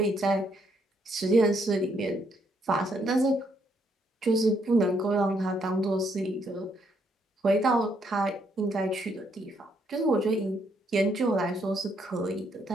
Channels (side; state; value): both; normal; correlation 0.72